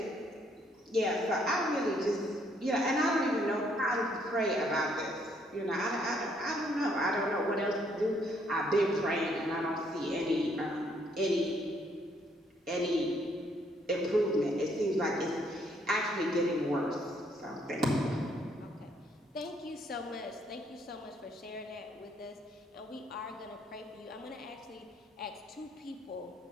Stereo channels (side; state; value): both; normal; correlation 0.69